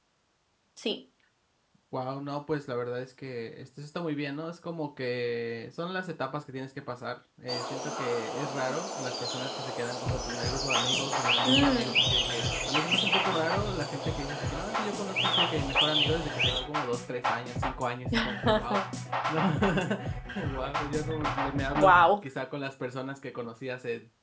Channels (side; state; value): both; identical; correlation 1.00